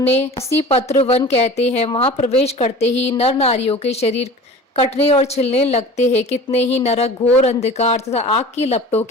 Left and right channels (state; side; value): normal; both; correlation 0.40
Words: असी पत्र वन कहते हैं। वहां प्रवेश करते ही नर नारियों के शरीर कटने और छिलने लगते हैं। कितने ही नरक घोर अंधकार तथा आग की लपटों